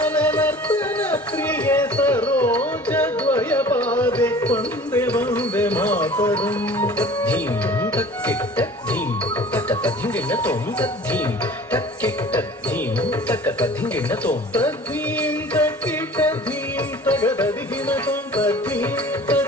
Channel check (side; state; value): both; normal; correlation 0.45